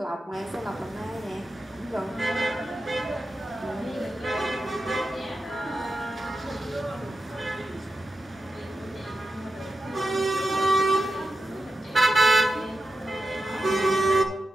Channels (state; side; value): normal; both; correlation 0.89